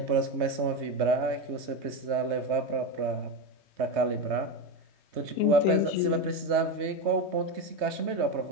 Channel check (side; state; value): left; late; 3.3 ms